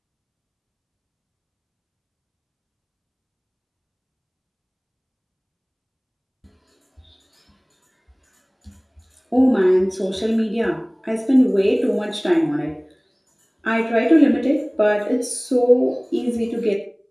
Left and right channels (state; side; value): identical; both; correlation 1.00